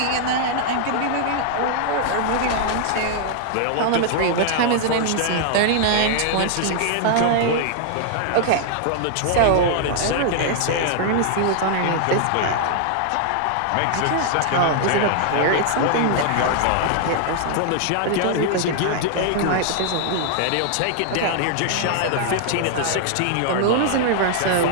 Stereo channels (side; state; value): both; different; correlation -0.01